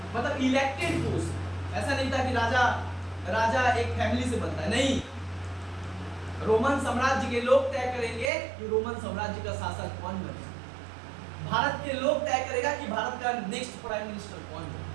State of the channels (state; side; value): drops out; left; at 8.3 s